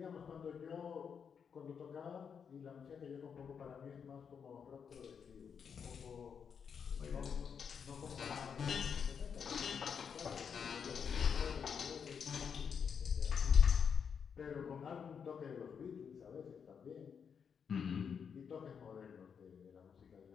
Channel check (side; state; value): right; quieter; 6.8 dB